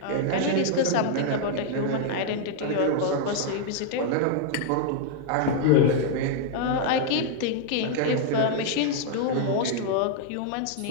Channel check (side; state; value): both; different; correlation -0.01